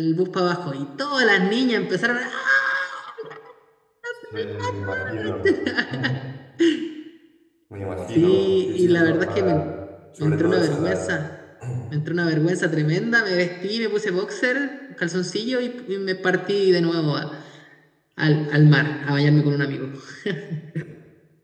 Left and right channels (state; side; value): identical; both; correlation 1.00